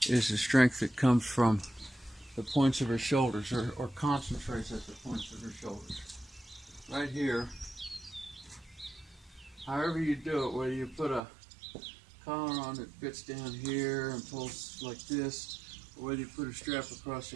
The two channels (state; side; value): drops out; left; at 11.2 s